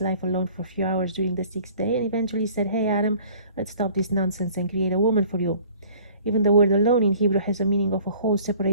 life alone for a few hours during the 6th day, and eventually said, "Hey Adam, let's stop this nonsense and create a woman for you." Even the word alone in Hebrew has a meaning of a whole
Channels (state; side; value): inverted; both; correlation -0.51